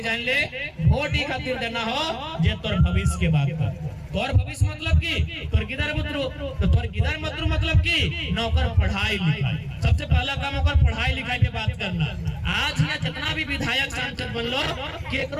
जान ले, वोट ही खातिर देना हो जे तोर भविष्य के बात कर। तोर भविष्य मतलब की तोर गिदर मुद्रू, तो तोर गिदर मुद्रू मतलब की नौकर पढ़ाई लिखाई। सबसे पहला काम होकर पढ़ाई लिखाई के बात करना। आज यहाँ जितना भी विधायक सांसद बन लो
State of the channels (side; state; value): both; identical; correlation 1.00